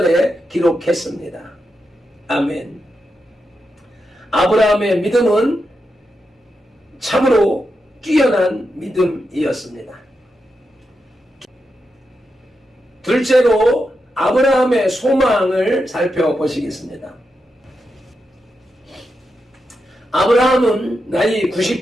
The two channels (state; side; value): normal; both; correlation 0.87